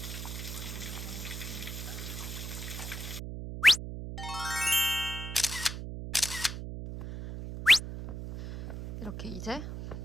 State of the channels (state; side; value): noise; right; hum, 7 dB below the sound